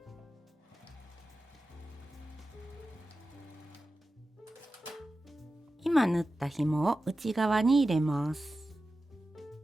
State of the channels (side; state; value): both; normal; correlation 0.93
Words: 今縫った紐を内側に入れます。